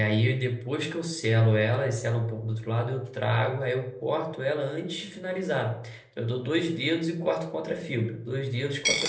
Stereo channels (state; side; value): identical; both; correlation 1.00